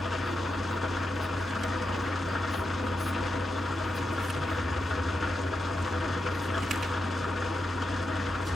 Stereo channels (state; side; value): normal; both; correlation 0.87